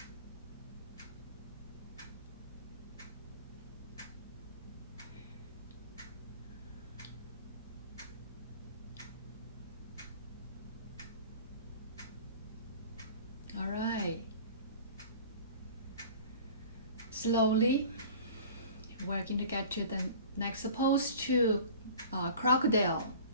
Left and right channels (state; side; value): inverted; both; correlation -0.43